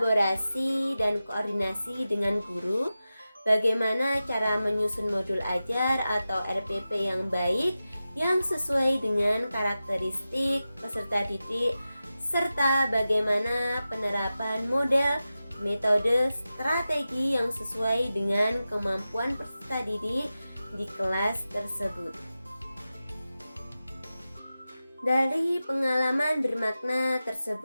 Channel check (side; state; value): both; inverted; correlation -0.93